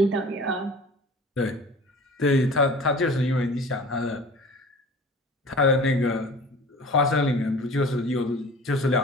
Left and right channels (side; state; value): both; normal; correlation 0.42